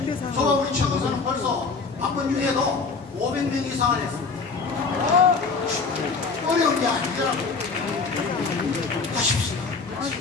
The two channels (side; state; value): right; quieter; 4.6 dB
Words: 저와 우리 최근서는 벌써 바쁜 중에도 500명 이상을 했습니다. 어려운 게 아니더라고요. 하십시오.